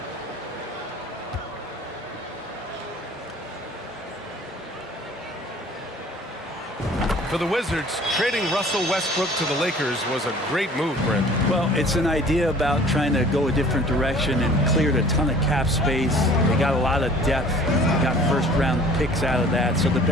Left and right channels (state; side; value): normal; both; correlation 0.50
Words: For the Wizards, trading Russell Westbrook to the Lakers was a great move, Brent. Well, it's an idea about trying to go a different direction and cleared a ton of cap space. They got a lot of depth. They got first-round picks out of that. So the